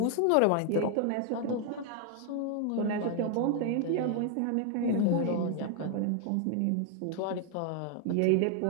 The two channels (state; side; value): different; both; correlation 0.00